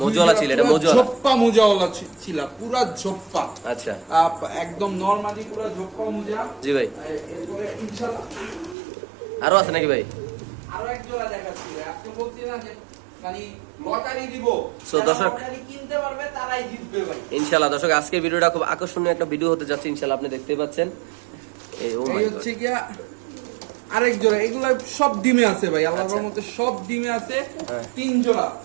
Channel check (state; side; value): drops out; left; at 8.8 s